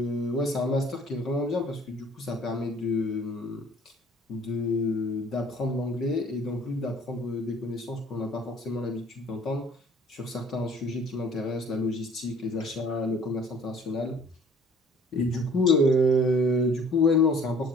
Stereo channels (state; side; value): normal; both; correlation 0.53